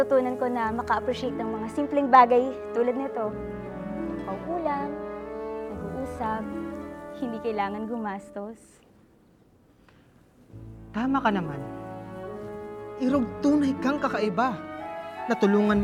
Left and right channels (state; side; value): identical; both; correlation 1.00